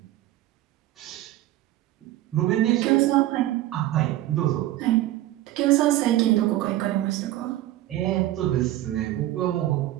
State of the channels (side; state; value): left; quieter; 14.8 dB